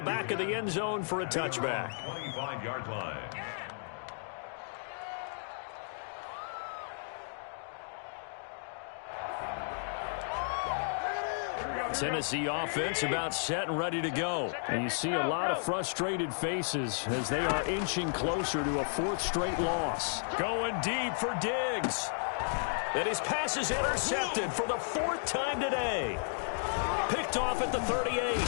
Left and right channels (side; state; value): right; silent; digital silence